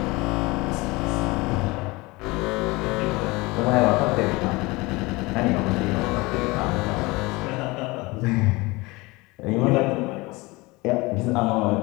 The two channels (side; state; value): right; quieter; 23.3 dB